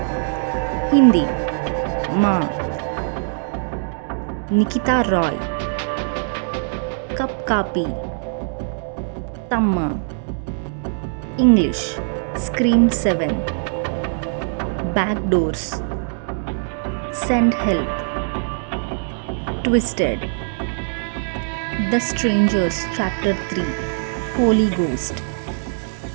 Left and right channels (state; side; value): silent; left; digital silence